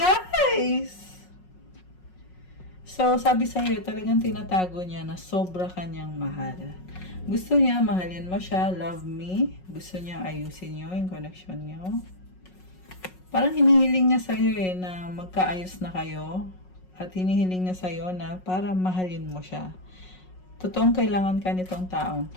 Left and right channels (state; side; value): late; right; 5.4 ms